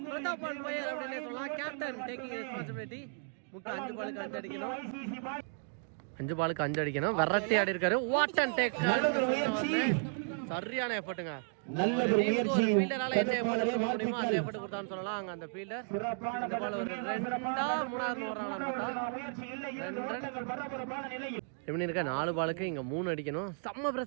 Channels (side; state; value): left; silent; 55 dB below the other